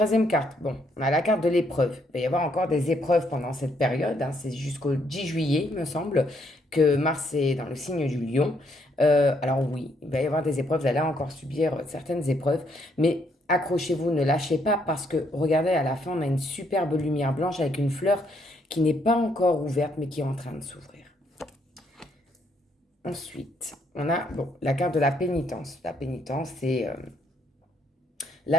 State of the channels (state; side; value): normal; both; correlation 0.72